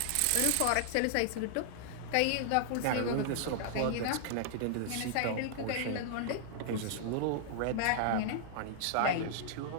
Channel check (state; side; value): different; both; correlation -0.01